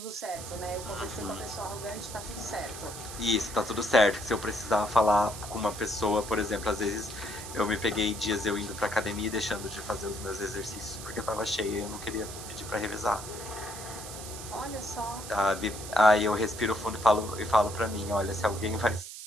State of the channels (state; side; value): noise; right; hiss, 11 dB below the sound